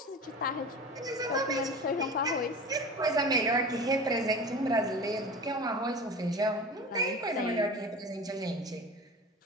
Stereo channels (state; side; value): normal; both; correlation 0.34